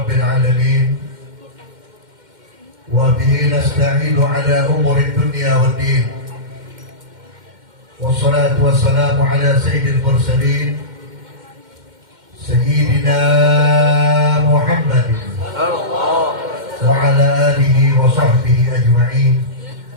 alamin. Wa bihi nasta'inu ala umuri dunya waddin. Wassalatu wassalamu ala sayyidil mursalin Sayyidina Muhammadin wa ala alihi wa sahbihi ajma'in.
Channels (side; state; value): left; late; 2.1 ms